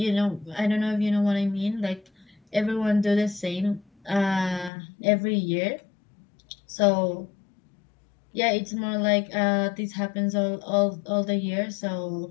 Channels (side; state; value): right; drops out; at 4.7 s